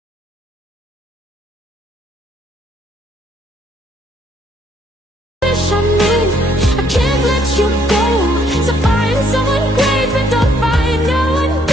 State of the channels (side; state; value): both; normal; correlation 0.68